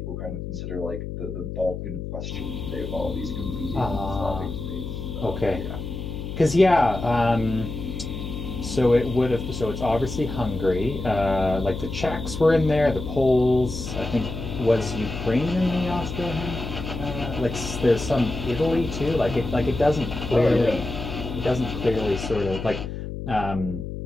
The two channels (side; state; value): left; noise; hum, 7 dB below the sound